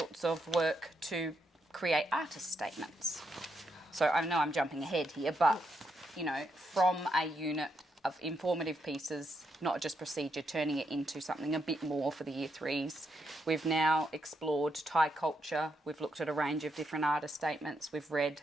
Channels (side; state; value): both; normal; correlation 0.80